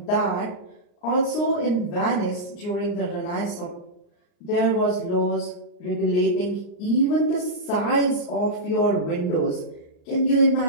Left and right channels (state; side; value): late; right; 39 ms